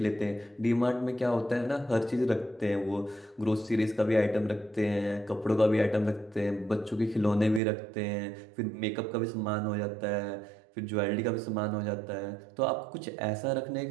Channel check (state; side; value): drops out; left; at 7.6 s